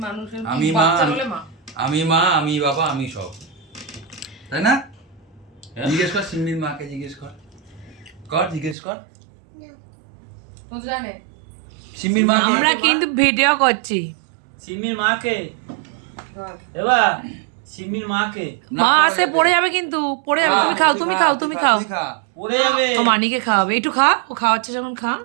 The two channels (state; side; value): drops out; left; at 8.8 s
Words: মানুষের আমি মা, বাচ্চা হলে মা আমি মা, আমি বাবা, আমি সব, তাই না? হ্যাঁ। জিজ্ঞেস কর সিম্বির মাকে, জিজ্ঞেস কর, জিজ্ঞেস কর তো জানে সিম্বির মা। আমরা কিন্তু ভিডিও করছি। সিমির মাকে বল। এবার সিমির মাকে মা আসে পড়ে যাবে, কিন্তু পড়ে যাবে। তুমি খাও, তুমি খাও, তুমি খাও। পড়ে যাবে। ও মানিকে খাওয়াবে, একটু খা। ও খাওয়াচ্ছে যখন খা।